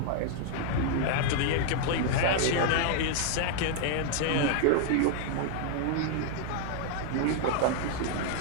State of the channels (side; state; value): both; different; correlation 0.00